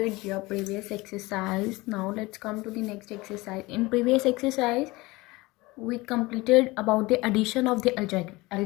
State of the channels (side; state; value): right; quieter; 21.7 dB